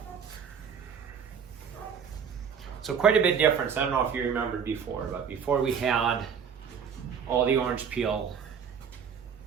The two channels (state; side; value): quieter; left; 7.1 dB